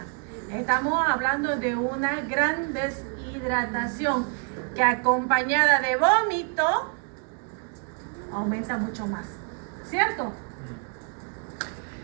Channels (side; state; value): left; quieter; 39.0 dB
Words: Estamos hablando de una gran deshidratación que acompañada de vómito aumenta mucho más, ¿cierto?